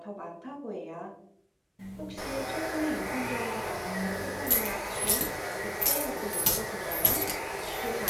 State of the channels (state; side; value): identical; both; correlation 1.00